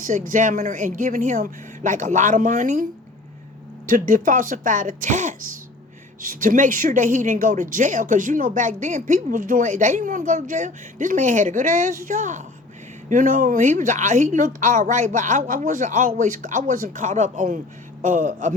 examiner and giving him like a lot of money to falsify the test to make sure that he didn't go to jail. Because back then people was doing, they didn't want to go to jail. This man had a good ass job. He looked all right, but I wasn't caught up on a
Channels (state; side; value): quieter; right; 3.1 dB